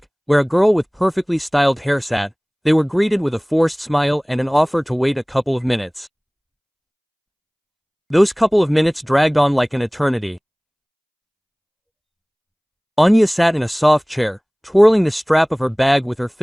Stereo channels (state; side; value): identical; both; correlation 1.00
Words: where a girl with perfectly styled hair sat, they were greeted with a forced smile and an offer to wait a couple of minutes. Those couple of minutes dragged on like an eternity. Anya sat in a soft chair, twirling the strap of her bag with her